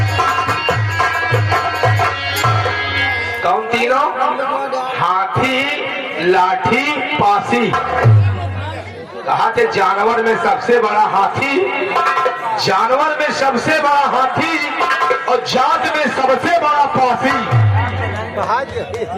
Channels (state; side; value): identical; both; correlation 1.00